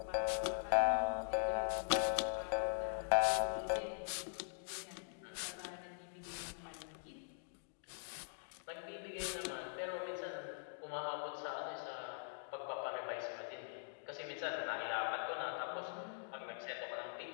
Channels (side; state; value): right; silent; digital silence